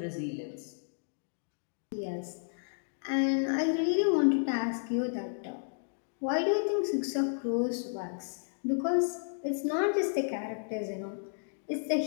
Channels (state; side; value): silent; right; digital silence